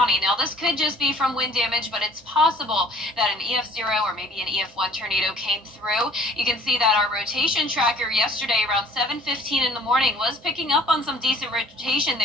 Now, this could just be from wind damage, but it's possible that an EF0 or maybe an EF1 tornado came through. You can see that our rotation tracker yesterday around 7:15 in the morning was picking up on some decent rotation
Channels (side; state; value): both; normal; correlation 0.52